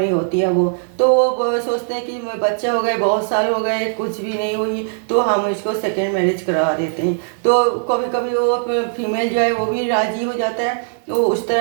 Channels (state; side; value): silent; left; 61 dB below the other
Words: होती है वो, तो वो सोचते हैं कि बच्चा हो गए, बहुत साल हो गए, कुछ भी नहीं हुई, तो हम इसको सेकेंड मैरिज करा देते हैं। तो कभी कभी वो फीमेल जो है वो भी राजी हो जाता है, वो उस